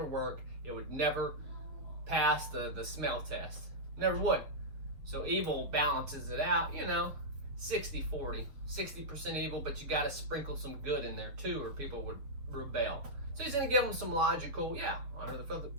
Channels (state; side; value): late; left; 7.2 ms